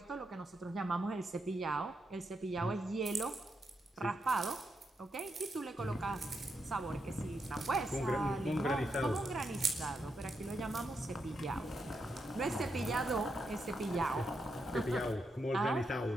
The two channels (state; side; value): normal; both; correlation 0.83